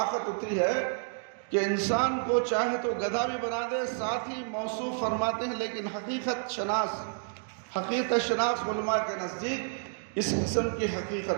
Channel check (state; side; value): silent; left; digital silence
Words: اتنی ہے کہ انسان کو چاہے تو گدھا بھی بنا دے، ساتھ ہی موصوف فرماتے ہیں، لیکن حقیقت شناس علماء کے نزدیک اس قسم کی